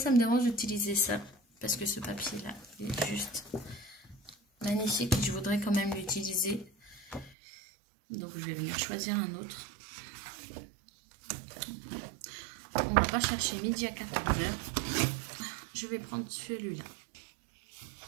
me dérange d'utiliser ça, parce que ce papier-là, il est juste magnifique, je voudrais quand même l'utiliser. Donc, je vais venir choisir un autre. On va pas chercher midi à 14 h. Je vais prendre celui-là.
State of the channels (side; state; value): left; drops out; at 7.4 s